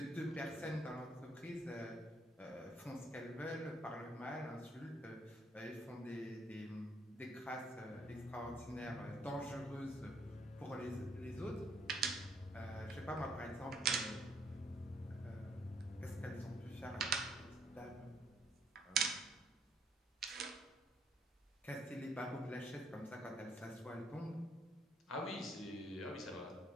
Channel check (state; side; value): normal; both; correlation 0.69